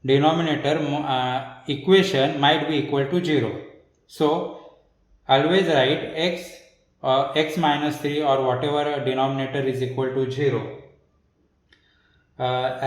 denominator equation might be equal to 0. So always write x minus 3 or whatever denominator is equal to 0.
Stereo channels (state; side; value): identical; both; correlation 1.00